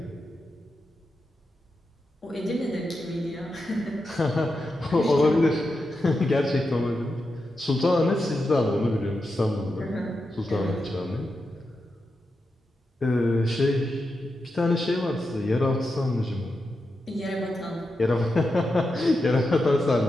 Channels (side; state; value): both; normal; correlation 0.88